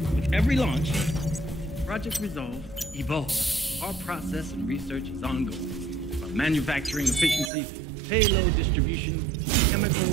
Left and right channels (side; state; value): left; drops out; at 7.5 s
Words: with every launch, Project Resolve evolves. Our process and research is ongoing. From manufacturing efficiency, payload distribution, chemical